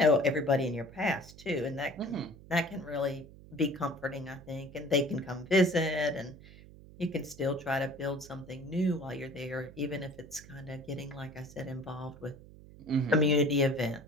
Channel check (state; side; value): noise; right; hum, 19 dB below the sound